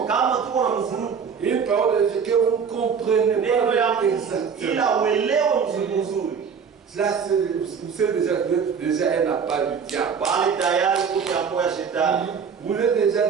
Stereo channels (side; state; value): left; quieter; 6.4 dB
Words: une parole de Dieu que vous ne comprenez pas avec exactement, là, vous savez déjà un appât du diable. Vous êtes déjà